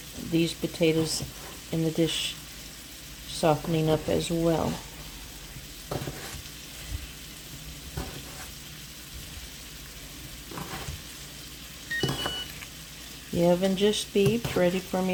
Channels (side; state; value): both; identical; correlation 1.00